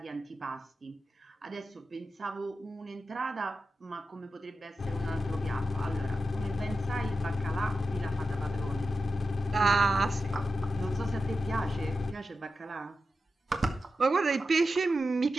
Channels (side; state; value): both; normal; correlation 0.91